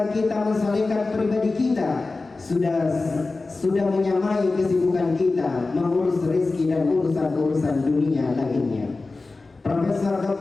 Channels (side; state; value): right; quieter; 3.6 dB